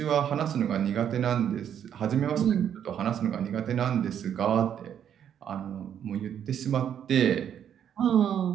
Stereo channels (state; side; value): quieter; left; 9.2 dB